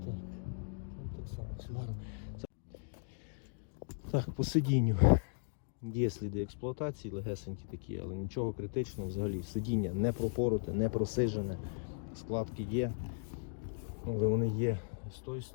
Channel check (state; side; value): silent; right; digital silence